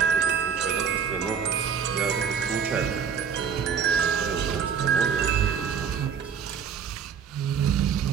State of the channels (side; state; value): left; quieter; 7.0 dB